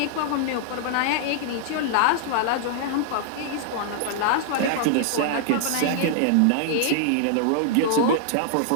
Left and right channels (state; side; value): different; both; correlation -0.01